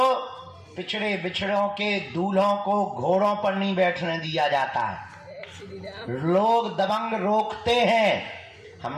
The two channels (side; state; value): both; identical; correlation 1.00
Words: पिछड़े बिछड़ों के दूल्हों को घोड़ों पर नहीं बैठने दिया जाता है। लोग दबंग रोकते हैं।